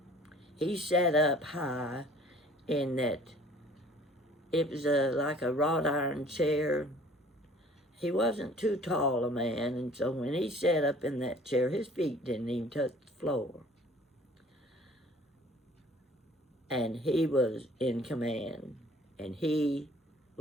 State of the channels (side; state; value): both; normal; correlation 0.52